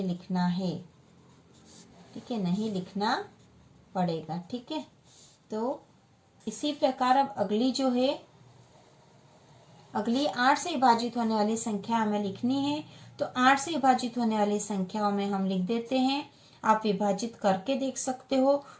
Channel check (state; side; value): identical; both; correlation 1.00